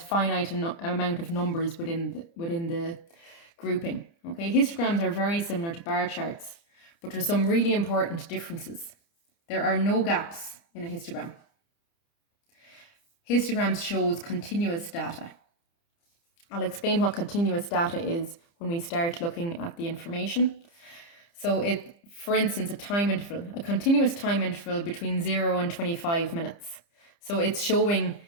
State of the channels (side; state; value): right; late; 30 ms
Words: amount of numbers within the grouping. Okay, histograms are very similar to bar charts, but there's some really important differences. There are no gaps in a histogram. Histograms shows continuous data. I'll explain what continuous data is when we start looking at the information. So for instance, a continuous time interval between 0 and 25 minutes. So it's showing